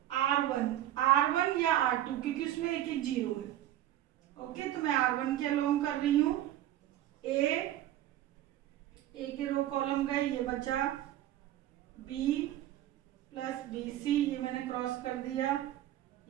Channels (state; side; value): quieter; left; 13.0 dB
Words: R1 या R2, क्योंकि उसमें एक एक 0 है, ओके। तो मैं R1 के अलोंग कर रही हूँ। ए के रो कॉलम गए, ये बचा B प्लस BC, ये मैंने क्रॉस कर दिया,